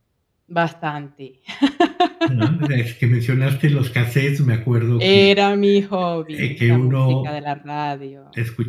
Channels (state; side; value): identical; both; correlation 1.00